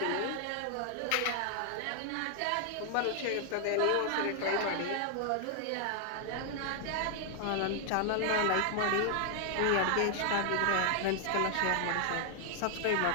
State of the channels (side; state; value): both; different; correlation 0.00